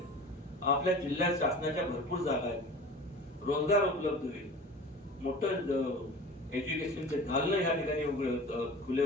आपल्या जिल्ह्यात शासनाच्या भरपूर जागा आहेत, रोजगार उपलब्ध होईल, मोठं एज्युकेशनचे दालनं ह्या ठिकाणी खुले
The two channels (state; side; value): normal; both; correlation 0.38